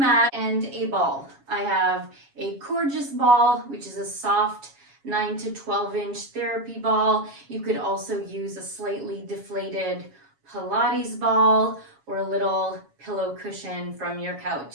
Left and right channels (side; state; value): left; late; 7.3 ms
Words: and a ball. I have a gorgeous ball, which is a soft 9 to 12 inch therapy ball. You could also use a slightly deflated Pilates ball or a little pillow cushion from your